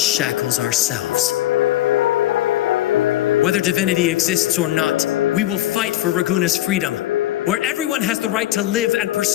ourselves. Whether divinity exists or not, we will fight for Raguna's freedom, where everyone has the right to live and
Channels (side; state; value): right; quieter; 14.5 dB